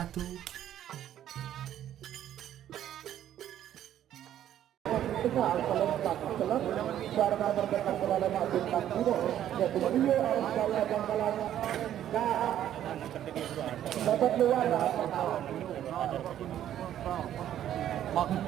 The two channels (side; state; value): left; quieter; 11.3 dB